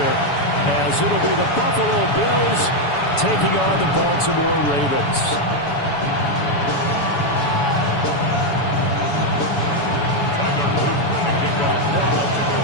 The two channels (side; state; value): right; late; 7.0 ms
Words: as it'll be the Buffalo Bills taking on the Baltimore Ravens.